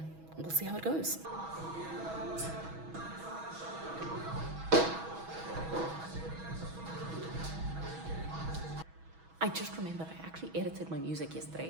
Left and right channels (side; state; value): left; late; 6.2 ms